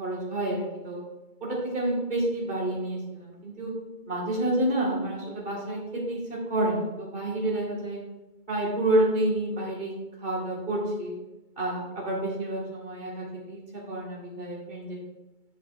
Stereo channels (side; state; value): right; late; 2.2 ms